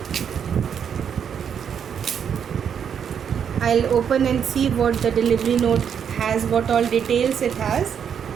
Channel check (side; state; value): left; quieter; 7.8 dB